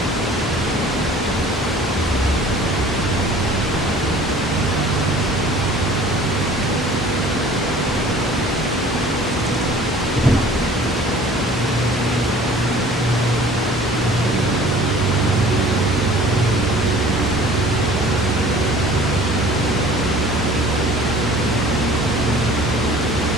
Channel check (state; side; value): normal; both; correlation 0.49